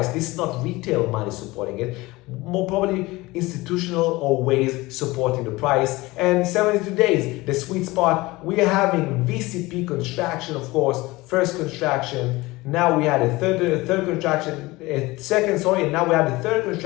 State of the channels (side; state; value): right; quieter; 20.9 dB